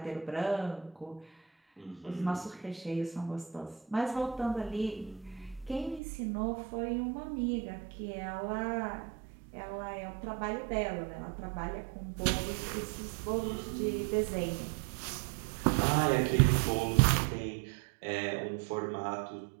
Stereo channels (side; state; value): left; drops out; at 6.0 s